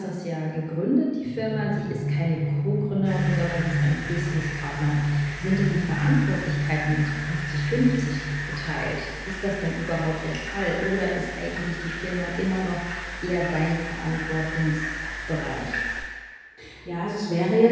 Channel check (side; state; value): both; identical; correlation 1.00